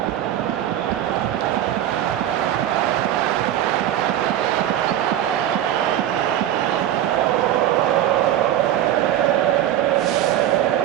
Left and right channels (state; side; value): quieter; left; 11.8 dB